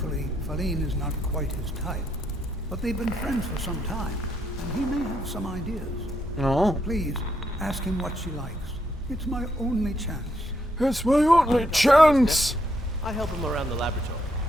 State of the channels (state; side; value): normal; both; correlation 0.77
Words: Feline is not quite his type, but they've been friends for some time, and he may have some ideas. Oh. Please, ask him what she likes. It's my only chance. It's my only chance. I help him around the laboratory.